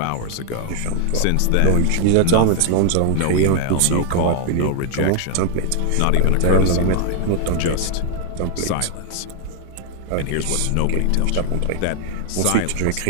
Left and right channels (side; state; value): both; different; correlation 0.00